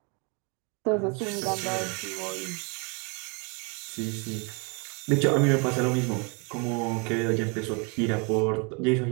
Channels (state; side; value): quieter; left; 33.2 dB